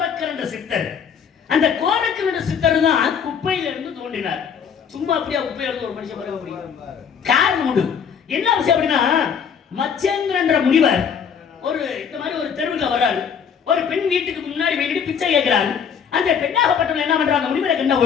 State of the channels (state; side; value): quieter; right; 7.2 dB